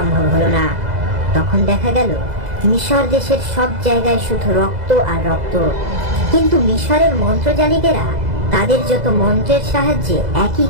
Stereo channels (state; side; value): late; left; 2.0 ms